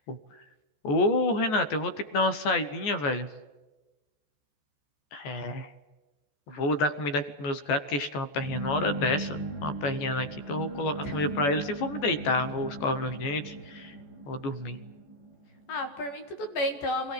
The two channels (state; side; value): late; right; 14 ms